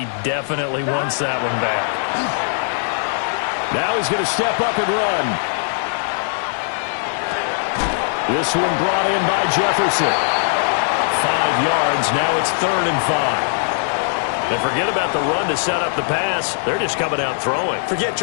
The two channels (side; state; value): right; silent; 57 dB below the other